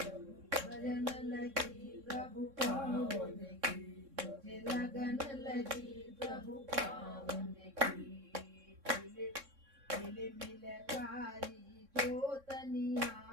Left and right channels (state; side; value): late; left; 3.6 ms